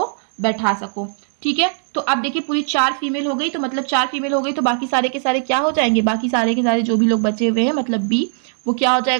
बैठा सको। ठीक है, तो अब देखिए पूरी 4 फीमेल हो गई, तो मतलब 4 फीमेल हो गई तो बाकी सारे के सारे क्या हो जाएंगे, बाकी सारे के सारे जो भी लोग बचे हुए हैं मतलब बी, वो क्या हो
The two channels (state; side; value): silent; left; digital silence